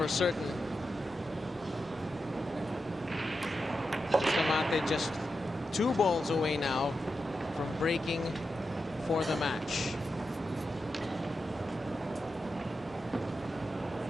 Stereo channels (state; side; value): normal; both; correlation 0.89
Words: certain. Bustamante just 2 balls away now from breaking for the match.